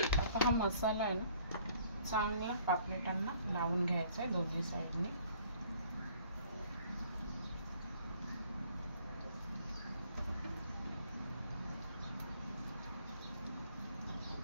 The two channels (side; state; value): both; inverted; correlation -0.58